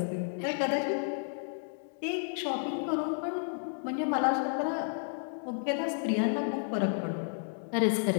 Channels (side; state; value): right; silent; digital silence